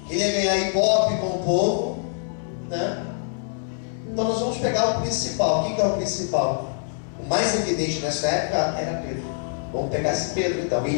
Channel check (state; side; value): silent; right; 62 dB below the other